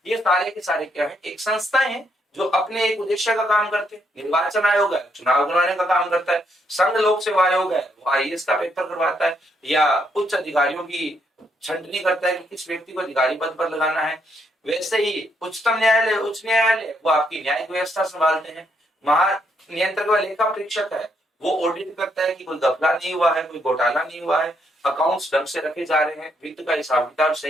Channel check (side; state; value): both; normal; correlation 0.75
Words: ये सारे के सारे क्या है, एक संस्थाएं हैं जो अपने एक उद्देश्य का काम करते हैं। निर्वाचन आयोग है, चुनाव करवाने का काम करता है। संघ लोक सेवा आयोग है, वो आईएएस का पेपर करवाता है या उच्च अधिकारियों की छंटनी करता है कि किस व्यक्ति को अधिकारी पद पर लगाना है। वैसे ही उच्चतम न्यायालय, उच्च न्यायालय वो आपकी न्यायिक व्यवस्था संभालते हैं। महानियंत्रक व लेखा परीक्षक है, वो ऑडिट करता है कि कोई घपला नहीं हुआ है, कोई घोटाला नहीं हुआ है, अकाउंट्स ढंग से रखे जा रहे हैं, वित्त का हिसाब किताब